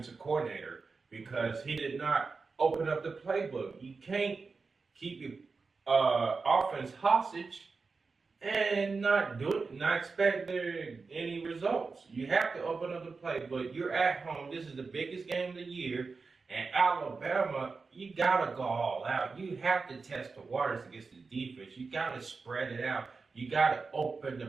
coordinator because he did not open up the playbook. You can't keep your offense hostage and not expect any results. You have to open up the playbook. You're at home. This is the biggest game of the year. And Alabama, you got to go all out. You have to test the waters against the defense. You got to spread it out. You got to open the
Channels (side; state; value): left; quieter; 4.4 dB